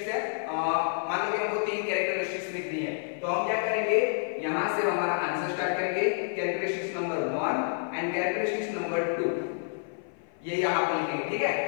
है, मान लो कि हमको 3 कैरेक्टरिस्टिक्स लिखनी है, तो हम क्या करेंगे, यहाँ से हमारा आंसर स्टार्ट करेंगे characteristics number 1 and characteristics number 2, ये यहाँ पर लिखेंगे, ठीक है।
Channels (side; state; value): right; silent; 56 dB below the other